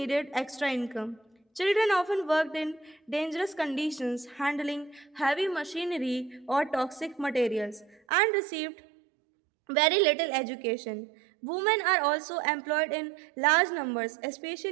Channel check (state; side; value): drops out; left; at 8.0 s